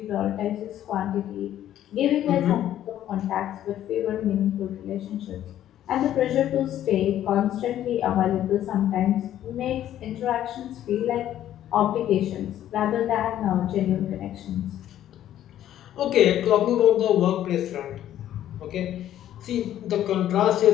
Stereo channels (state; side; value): quieter; right; 11.8 dB